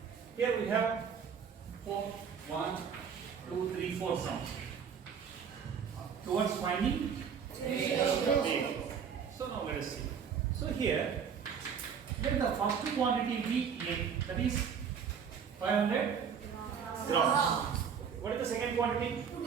Here we have 4, 1, 2, 3, 4 sums. Towards finding ratio. So now let us see. So here, let the first quantity be A, that is 500 grams. What is the second quantity? 2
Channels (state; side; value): quieter; left; 7.1 dB